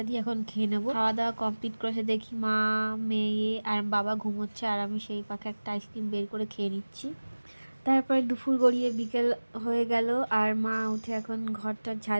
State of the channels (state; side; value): inverted; both; correlation -1.00